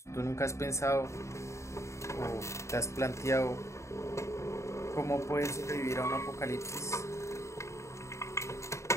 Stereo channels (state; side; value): late; right; 0.14 ms